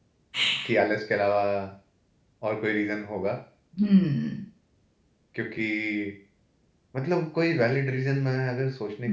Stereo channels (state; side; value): identical; both; correlation 1.00